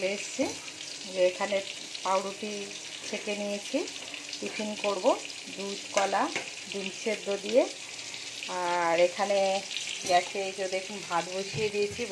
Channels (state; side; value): identical; both; correlation 1.00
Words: এসেছি, যে এখানে পাউরুটি ছেঁকে নিয়েছি, টিফিন করব দুধ কলা ডিম সেদ্ধ দিয়ে। আর এখানে গ্যাসে এই যে দেখুন ভাত বসিয়ে দিয়েছি,